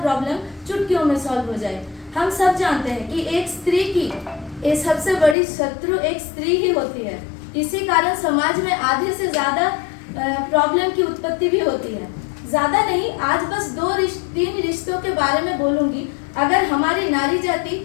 प्रॉब्लम चुटकियों में सॉल्व हो जाए। हम सब जानते हैं कि एक स्त्री की सबसे बड़ी शत्रु एक स्त्री ही होती है। इसी कारण समाज में आधे से ज्यादा प्रॉब्लम की उत्पत्ति भी होती है। ज्यादा नहीं, आज बस तीन रिश्तों के बारे में बोलूंगी। अगर हमारी नारी जाति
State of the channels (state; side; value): drops out; right; at 5.4 s